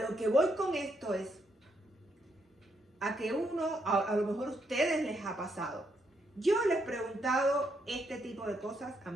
que voy con esto es a que a lo mejor a ustedes les ha pasado. Yo les he preguntado este tipo de cosas a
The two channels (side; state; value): both; normal; correlation 0.77